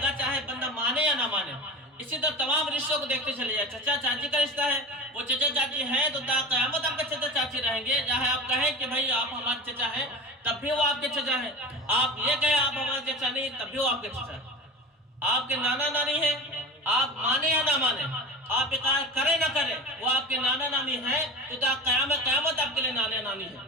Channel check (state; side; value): normal; both; correlation 0.31